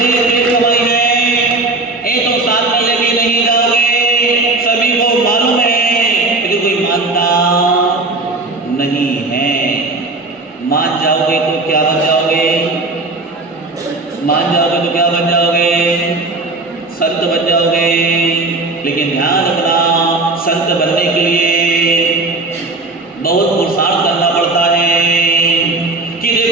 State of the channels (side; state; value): left; quieter; 3.2 dB